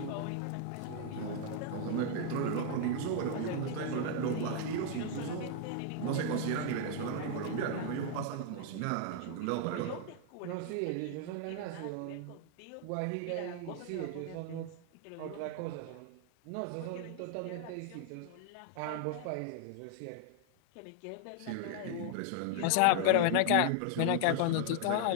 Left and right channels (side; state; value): both; different; correlation 0.00